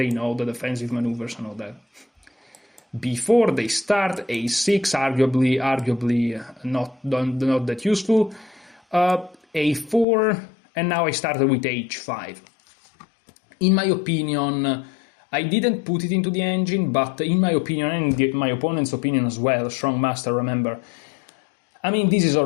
know the defensive maneuvers and all that. Before they start, a6, arguably not that useful. A4, and now I started with h5. In my opinion, I didn't put it into the engine, but in my opinion, and my opponent's opinion as well, strong master, remember, I mean, this is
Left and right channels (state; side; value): drops out; right; at 10.1 s